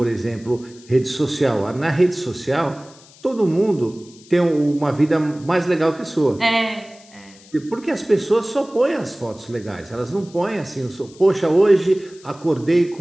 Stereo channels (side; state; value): left; noise; hiss, 24 dB below the sound